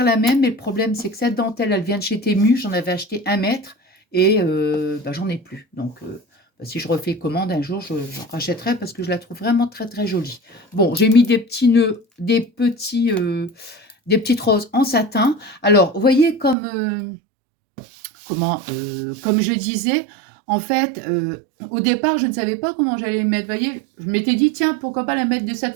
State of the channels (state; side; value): drops out; left; at 16.6 s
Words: la même, mais le problème, c'est que cette dentelle, elle vient de chez Temu. J'en avais acheté 1 mètre et bah, j'en ai plus. Donc, bah, si je refais commande un jour, j'en rachèterai parce que je la trouve vraiment très, très jolie. Bon, j'ai mis des petits nœuds, des petites roses en satin. Alors, vous voyez comme je disais, en fait, au départ, je ne savais pas comment j'allais les mettre. Vous voyez, je m'étais dit, tiens, pourquoi pas la mettre de